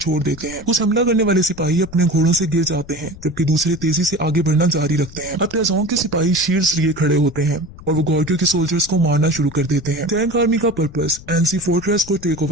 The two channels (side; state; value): left; noise; rumble, 18 dB below the sound